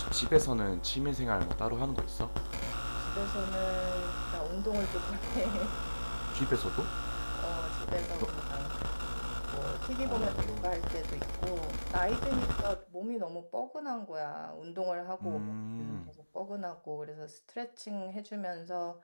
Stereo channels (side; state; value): both; inverted; correlation -1.00